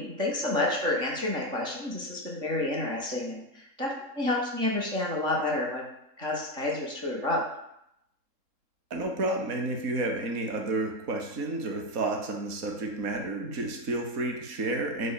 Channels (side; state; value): left; late; 3.7 ms